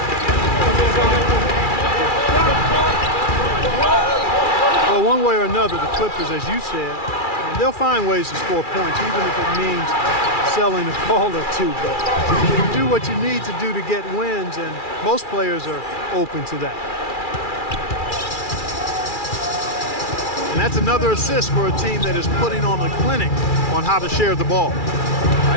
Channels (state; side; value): late; right; 2.4 ms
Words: Well, one way or another, the Clippers, as you said, they'll find ways to score points, even if it means selling a ball or two. But you do what you need to do to get wins, and most players are open to that. And that's another assist for a team that is putting on a clinic on how to share the ball.